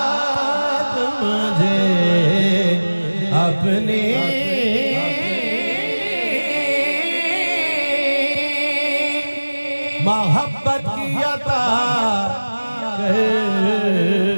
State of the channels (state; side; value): inverted; both; correlation -1.00